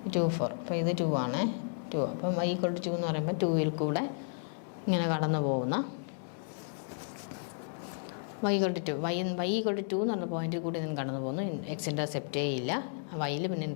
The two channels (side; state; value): right; silent; digital silence